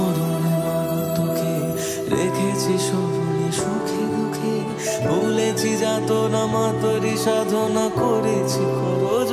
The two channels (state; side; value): identical; both; correlation 1.00